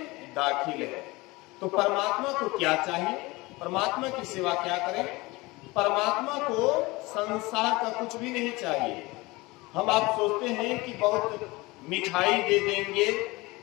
दाखिल है। तो परमात्मा को क्या चाहिए, परमात्मा की सेवा क्या करें? परमात्मा को संसार का कुछ भी नहीं चाहिए। हम आप सोचते हैं कि बहुत मिठाई दे देंगे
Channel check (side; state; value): right; quieter; 22.4 dB